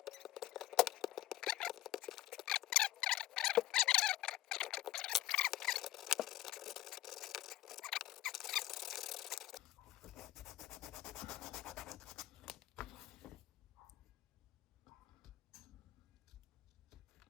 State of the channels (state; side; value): quieter; right; 14.7 dB